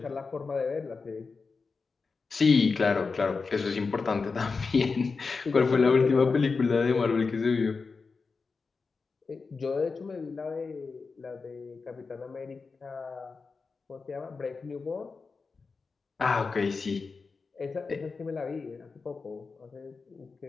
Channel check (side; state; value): right; quieter; 4.6 dB